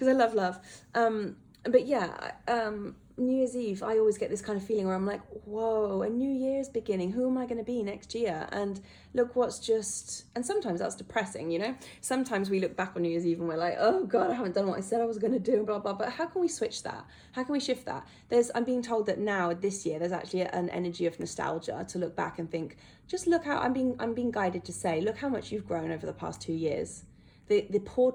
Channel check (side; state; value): both; identical; correlation 1.00